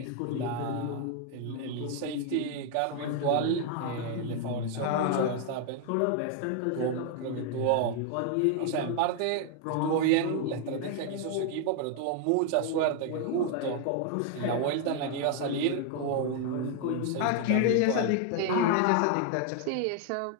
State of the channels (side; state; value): both; different; correlation 0.00